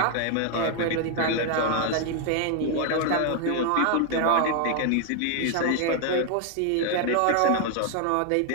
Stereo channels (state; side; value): different; both; correlation 0.00